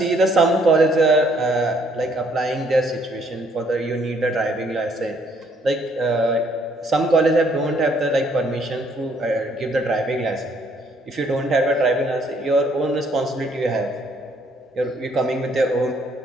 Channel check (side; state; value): both; normal; correlation 0.66